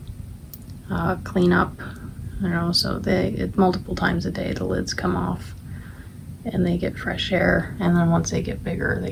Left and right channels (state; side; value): identical; both; correlation 1.00